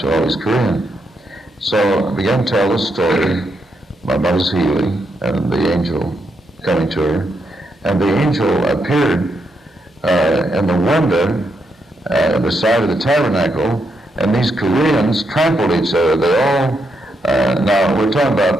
all these Koreans. So I began to tell the story about mother's healing and the angel coming to her. And the angel appeared in the window at the side of the tabernacle, and these Koreans trampled each other. They all, now we're talking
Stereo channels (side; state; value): both; normal; correlation 0.80